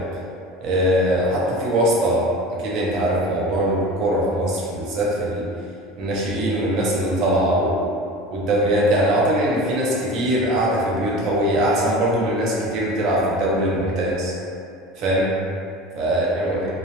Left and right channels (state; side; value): normal; both; correlation 0.35